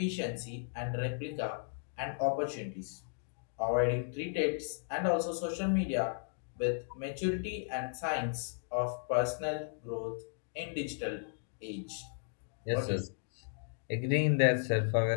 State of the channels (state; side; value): silent; right; digital silence